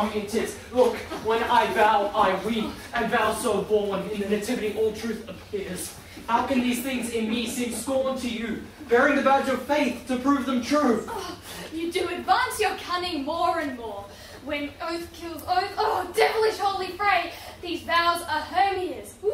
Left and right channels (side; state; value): both; identical; correlation 1.00